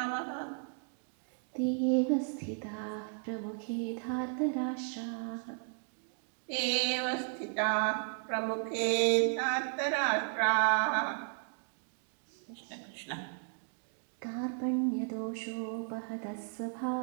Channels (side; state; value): left; silent; 55 dB below the other